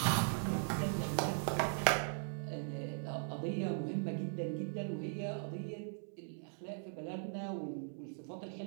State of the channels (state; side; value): silent; left; digital silence